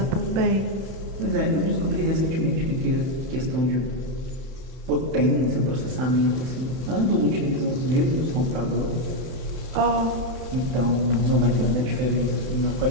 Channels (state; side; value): late; left; 31 ms